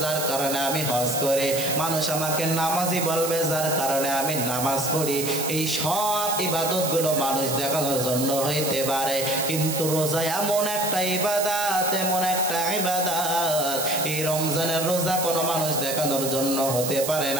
যার কারণে আমি হজ করি। মানুষ আমাকে নামাজি বলবে, যার কারণে আমি নামাজ পড়ি। এই সব ইবাদতগুলো মানুষ দেখানোর জন্য হইতে পারে, কিন্তু রোজা এমন একটা ইবাদত, এমন একটা ইবাদত, এই রমজানের রোজা কোনো মানুষ দেখানোর জন্য হতে পারে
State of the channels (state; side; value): noise; right; hiss, 4 dB below the sound